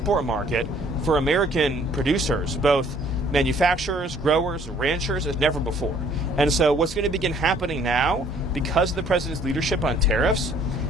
market for American producers, both manufacturers, growers, ranchers, as never before. And so what's going to begin happening now, because of the president's leadership on tariffs,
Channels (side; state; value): both; normal; correlation 0.59